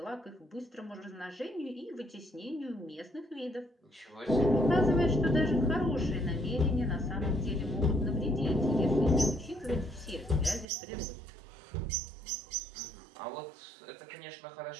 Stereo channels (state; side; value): drops out; left; at 10.7 s